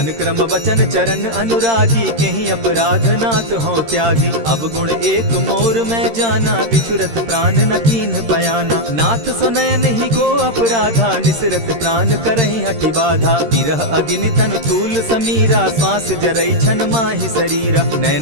क्रम वचन चरण अनुरागी केहि अपराध नाथ हो त्यागी। अब गुण एक मोर मैं जाना बिचुरत प्राण न कीन्ह बयाना। नाथ सुनयन ही को अपराधा निसरत प्राण करहि हटि बाधा। विरह अग्नि तन तूल समीरा श्वास जरई छन माहि शरीरा।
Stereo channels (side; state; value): left; late; 13 ms